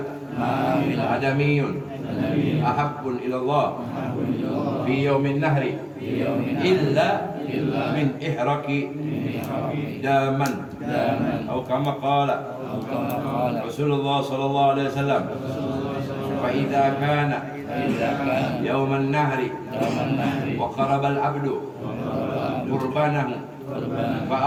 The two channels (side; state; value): both; identical; correlation 1.00